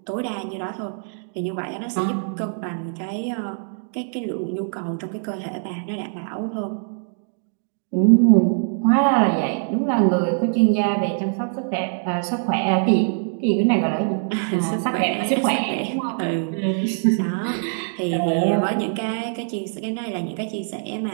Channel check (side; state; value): left; silent; 63 dB below the other